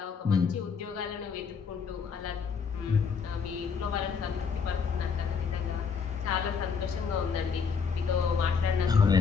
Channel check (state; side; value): quieter; right; 5.9 dB